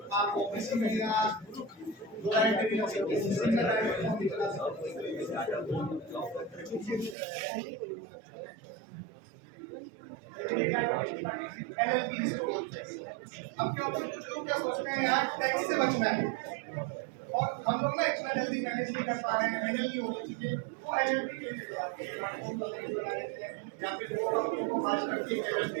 आप ऑफिस में मिलेगा 2 डायरेक्टर की ऑफिस सिंगल डायरेक्टर को निकला एलएलपी इसको बोलते हैं। अब क्या होता है, कुछ लोग क्या सोचते हैं यार टैक्स से बचना है, और हम लोग ना इतना जल्दी मैनेज नहीं कर पा रहे हैं, हैंडल नहीं हो रही चीजें, वो एलएलपी के लिए जाते हैं, बना लेते हैं या फिर वो कंपनी को मार्च करके एलएलपी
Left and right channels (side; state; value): left; drops out; at 7.2 s